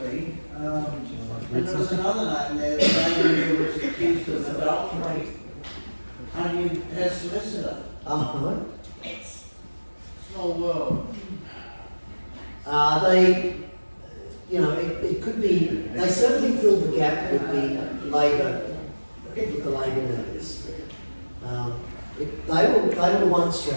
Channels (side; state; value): both; inverted; correlation -1.00